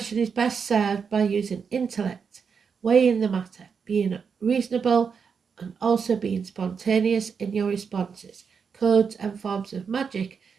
is best served by using intellect, weighing the matter, being reasonable and also being spontaneous in your responses. Codes and forms of magic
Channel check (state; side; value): quieter; left; 6.1 dB